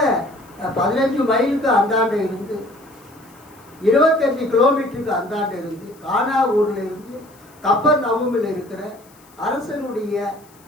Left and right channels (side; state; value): left; noise; hiss, 28 dB below the sound